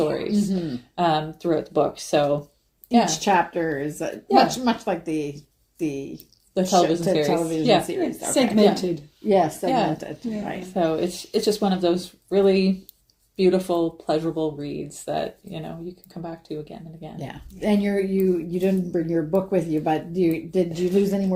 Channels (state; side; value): identical; both; correlation 1.00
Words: throughout the book. So each chapter is much like the television series. Okay. Segmented. Yes, segmented. Yeah. Right. So it's just one of those really beautiful, pleasurable reads that you can come back to again and again. Yeah, and you didn't bring your book with you, but did you lose any